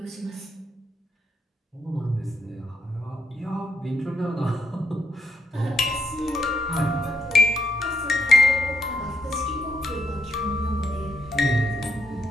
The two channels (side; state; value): both; normal; correlation 0.78